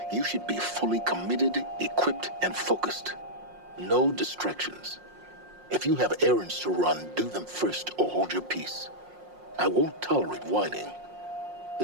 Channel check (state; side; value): late; left; 5.6 ms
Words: you should be fully committed, equipped, and focused. No distractions. If you have errands to run, do them first or hold your peace. I won't tolerate whining.